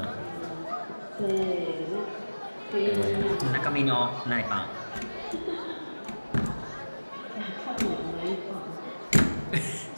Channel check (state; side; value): inverted; both; correlation -1.00